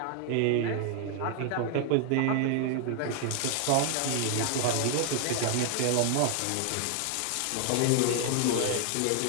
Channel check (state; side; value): different; both; correlation 0.00